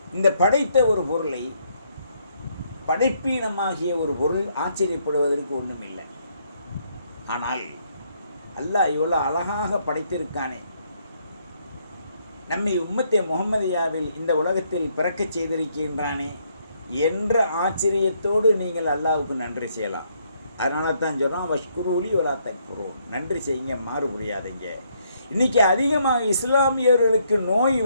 இந்த படைத்த ஒரு பொருளை, படைப்பீனமாகிய ஒரு பொருள் ஆச்சரியப்படுவதற்கு ஒன்றும் இல்லை. ஆனால் அல்லாஹ் இவ்வளோ அழகாக படைத்திருக்கானே, நம்மை உம்மத்தே முஹம்மதியாவில் இந்த உலகத்தில் பிறக்கச் செய்திருக்கின்றானே என்ற ஆச்சரியத்தோடு நீங்கள் அல்லாஹ்வுக்கு நன்றி செய்யலாம். அதனால தான் சொல்கிறோம், வஷ்குரூலி வலா தக்ஃபுரு, நன்றி செய்யுங்க, மாறு புரியாதீங்க. இன்றைக்கி அதிகமாக இஸ்லாமியர்களுக்கு நோய்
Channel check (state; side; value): inverted; both; correlation -0.71